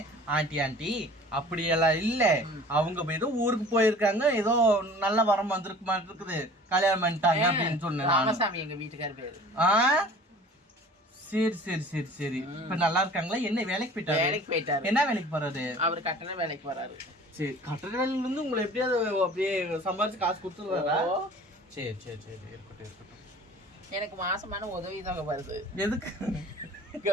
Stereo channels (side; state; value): both; normal; correlation 0.45